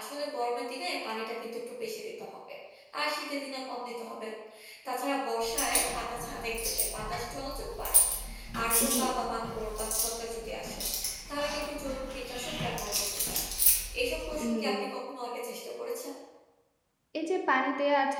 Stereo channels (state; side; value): identical; both; correlation 1.00